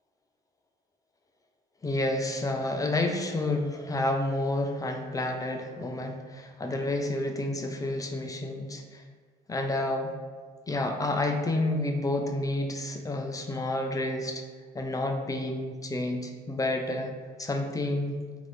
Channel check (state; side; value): normal; both; correlation 0.63